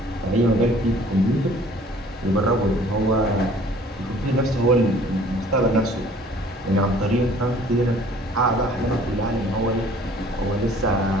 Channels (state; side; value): normal; both; correlation 0.53